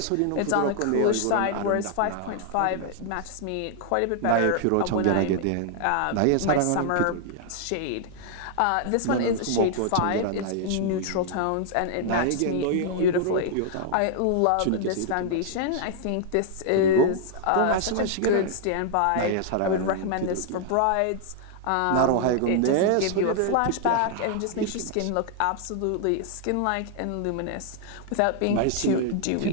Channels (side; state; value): both; different; correlation 0.00